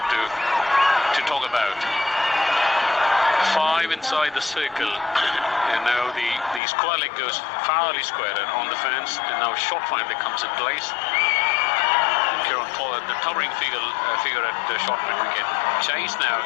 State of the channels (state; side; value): drops out; right; at 6.6 s